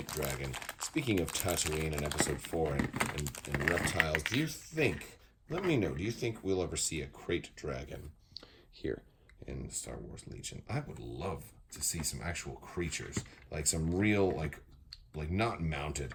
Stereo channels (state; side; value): identical; both; correlation 1.00